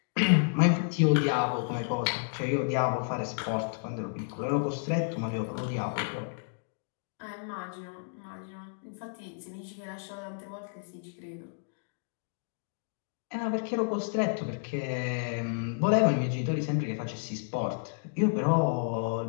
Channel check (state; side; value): silent; right; digital silence